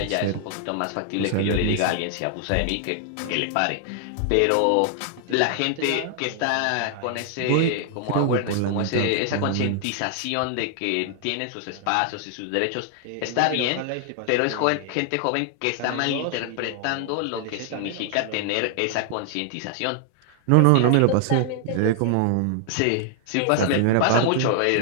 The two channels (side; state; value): both; different; correlation 0.00